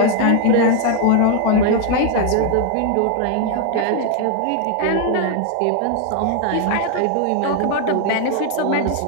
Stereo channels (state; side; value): different; both; correlation 0.00